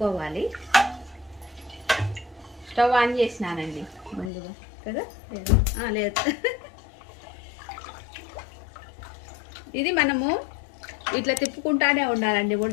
స్టవ్ ఆన్ చేసినానండి ముందుగా కదా, లేదు. ఇది మనము ఇట్లా తిప్పుకుంటానే ఉండాలండి,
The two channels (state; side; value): drops out; right; at 4.3 s